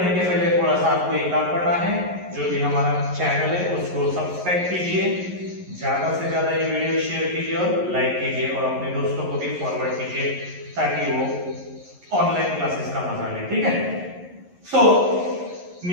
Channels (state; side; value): late; left; 11 ms